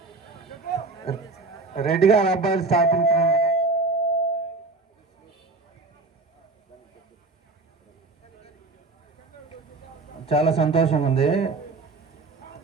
రెడ్డి గారి అబ్బాయిలు స్థాపించినందుకు చాలా సంతోషంగా ఉంది.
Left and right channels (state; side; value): quieter; left; 3.6 dB